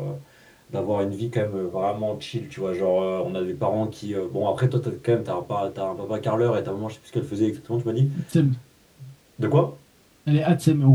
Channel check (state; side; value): identical; both; correlation 1.00